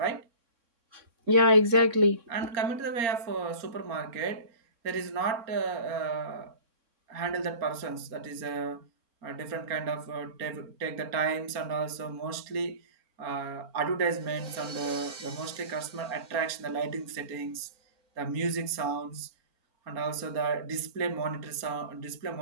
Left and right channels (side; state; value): left; late; 4.3 ms